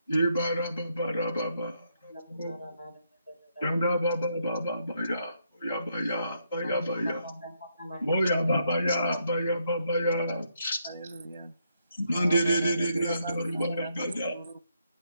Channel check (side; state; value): both; inverted; correlation -0.77